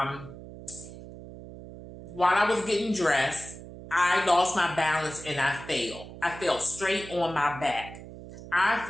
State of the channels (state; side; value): noise; right; hum, 14 dB below the sound